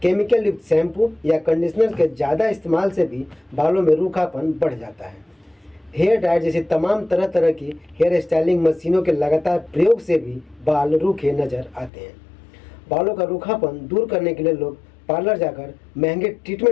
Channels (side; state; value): right; drops out; at 11.9 s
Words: केमिकल युक्त शैम्पू या कंडीशनर के ज़्यादा इस्तेमाल से भी बालों में रूखापन बढ़ जाता है। हेयर ड्रायर जैसी तमाम तरह तरह की हेयर स्टाइलिंग मशीनों के लगातार प्रयोग से भी बाल रूखे नजर आते हैं। बालों का रूखापन दूर करने के लिए लोग पार्लर जाकर महंगे